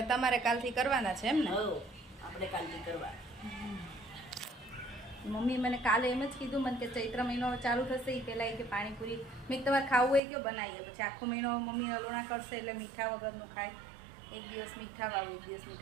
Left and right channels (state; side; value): drops out; left; at 10.2 s